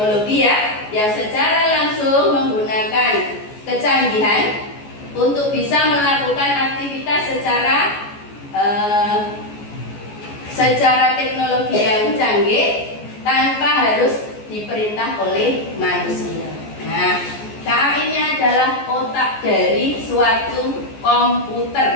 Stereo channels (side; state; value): right; late; 14 ms